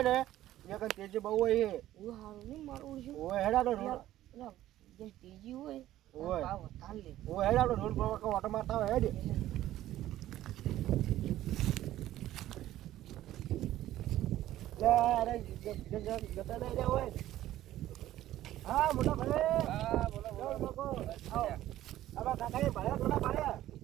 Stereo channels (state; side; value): quieter; left; 13.9 dB